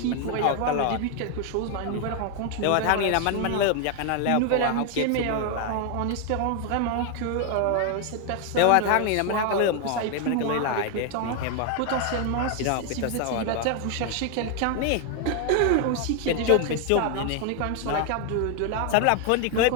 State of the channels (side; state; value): both; different; correlation 0.01